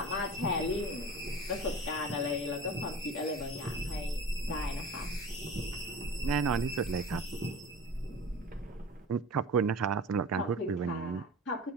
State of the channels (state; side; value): normal; both; correlation 0.36